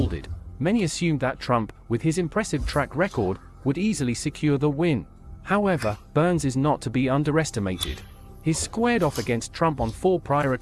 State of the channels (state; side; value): identical; both; correlation 1.00